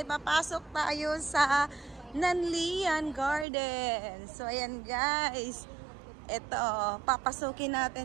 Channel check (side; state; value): left; drops out; at 3.5 s